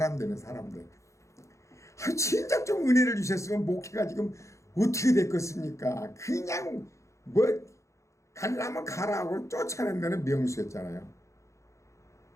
되는 사람들. 진작 좀 은혜를 주셨으면 목회가 지금 어떻게 됐겠습니까? 그냥 뭐 가려면 가라고 쫓아낸 데는 명수였잖아요.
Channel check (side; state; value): right; late; 0.15 ms